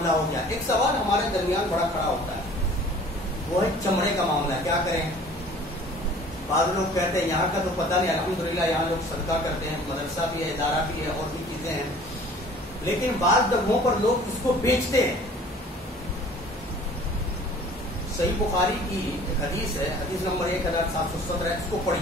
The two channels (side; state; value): both; normal; correlation 0.49